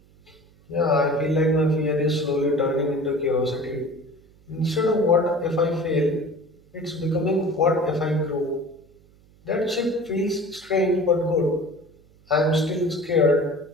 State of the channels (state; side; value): noise; right; hum, 29 dB below the sound